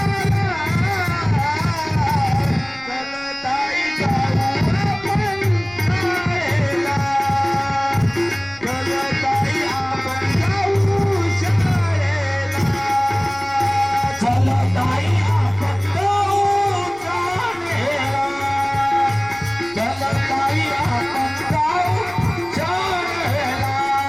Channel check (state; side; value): noise; left; rumble, 24 dB below the sound